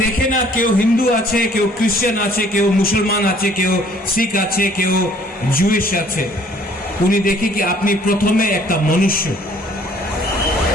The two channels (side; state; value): both; normal; correlation 0.58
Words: দেখে না কেউ হিন্দু আছে, কেউ খ্রিস্টান আছে, কেউ মুসলমান আছে, কেউ শিখ আছে, কেউ জুইশ আছে। উনি দেখে কি আপনি প্রথমে একটা মনুষ্য।